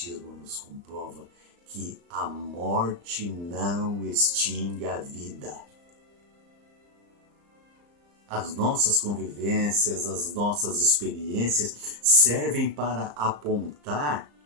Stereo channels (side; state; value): left; late; 35 ms